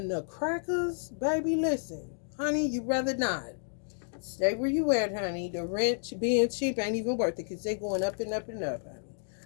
the crackers, baby, listen. Honey, you rather not. Stay where you at, honey. The rent being cheap ain't even worth it because they going up and up and up, honey.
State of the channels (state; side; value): silent; right; digital silence